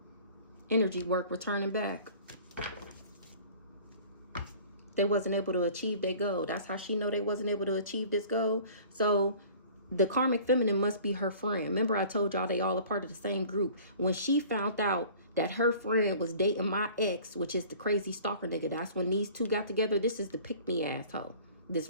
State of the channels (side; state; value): both; inverted; correlation -0.47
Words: Energy work returning back. They wasn't able to achieve their goal. That's how she know they wasn't able to achieve this goal. So the karmic feminine must be her friend. Remember I told y'all they all a part of the same group. When she found out that her friend was dating my ex, which is the crazy stalker nigga, that's when these two got together. This is the pick-me asshole. This